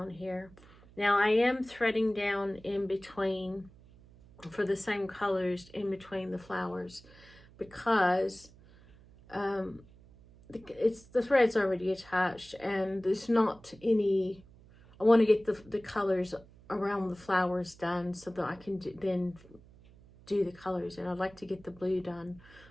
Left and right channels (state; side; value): noise; right; hum, 24 dB below the sound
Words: here. Now I am threading down in between for the same colors in between the flowers, because the thread's already attached, and there's not any. I want to get the colors around the flowers done so that I can then do the colors, and I'd like to get the blue done